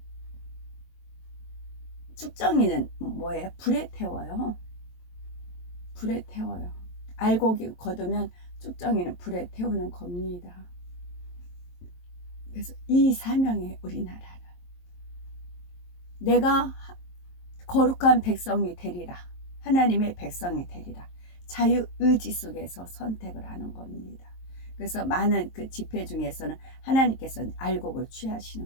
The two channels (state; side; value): late; right; 23 ms